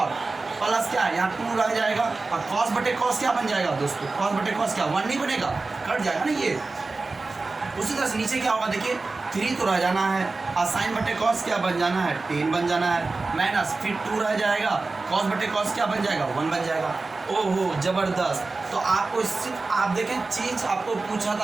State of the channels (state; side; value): quieter; left; 3.6 dB